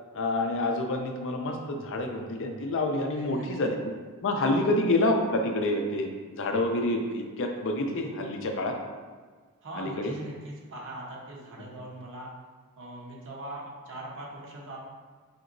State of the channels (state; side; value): normal; both; correlation 0.12